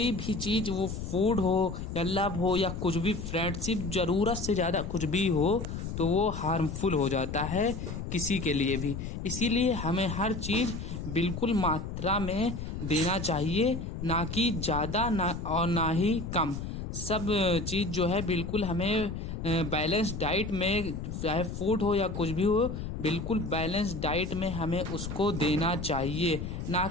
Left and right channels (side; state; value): left; noise; rumble, 6 dB below the sound